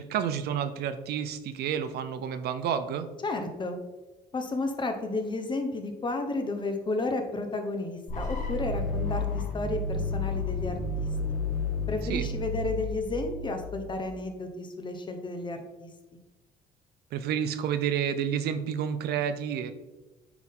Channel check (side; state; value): both; normal; correlation 0.28